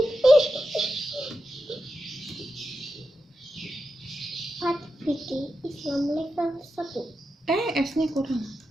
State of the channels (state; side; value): normal; both; correlation 0.89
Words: Fikih Islam level 1. S-nya kurang.